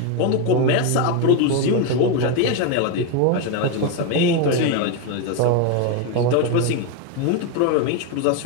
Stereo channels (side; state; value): both; different; correlation 0.02